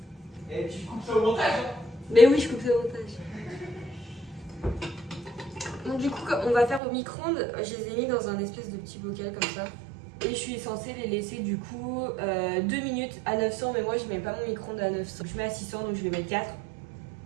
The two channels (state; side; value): drops out; left; at 6.8 s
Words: au micro-ondes, je les ai mis dans un espèce de petit bocal comme ça. Et je suis censée les laisser du coup 2 minutes à 900, mais moi je mets pas mon micro-ondes à 900. Je mets à 600, donc je vais mettre 4.